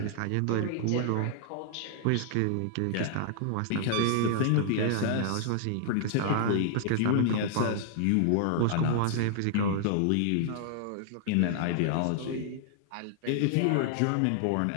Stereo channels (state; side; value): different; both; correlation -0.01